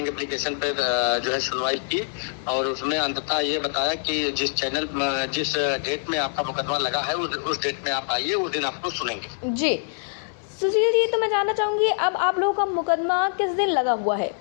एप्लीकेशन पर जो है सुनवाई की और उसमें अंततः ये बताया कि जिस डेट में आपका मुकदमा लगा है उस डेट में आप आइए, उस दिन आपको सुनेंगे। जी सुशील जी, तो मैं जानना चाहूंगी अब आप लोगों का मुकदमा किस दिन लगा हुआ है।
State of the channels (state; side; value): silent; right; 62 dB below the other